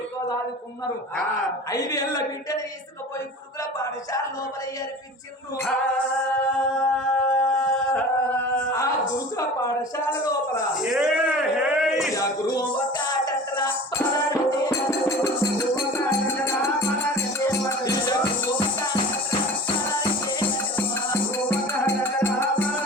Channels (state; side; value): normal; both; correlation 0.38